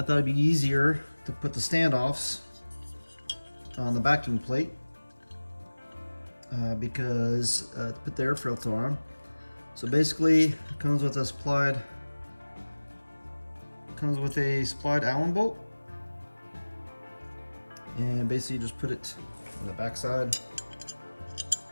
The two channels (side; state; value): both; inverted; correlation -1.00